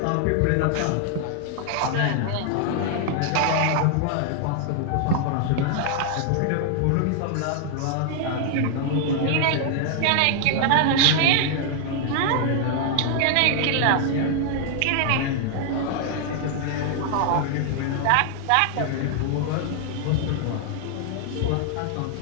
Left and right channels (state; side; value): different; both; correlation 0.00